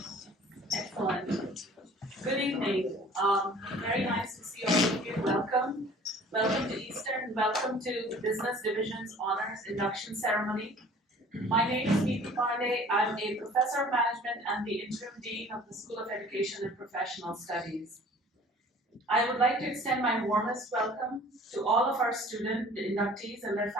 Excellent. Good evening. Very nice to see all of you. Welcome. Welcome to Eastern. Welcome to the Business Division's Honors Induction Ceremony. My name is Neeti Pandey. I'm a professor of management and the interim dean of the School of Education and Professional Studies. I would like to extend my warmest welcome to all of our student inductees and their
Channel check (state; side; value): normal; both; correlation 0.49